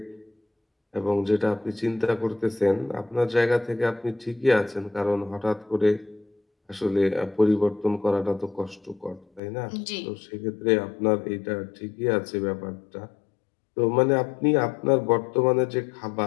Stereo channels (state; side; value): drops out; right; at 9.4 s